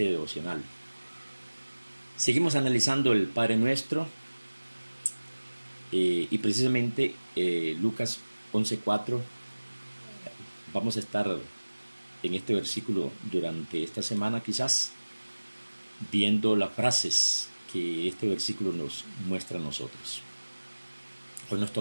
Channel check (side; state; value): both; inverted; correlation -1.00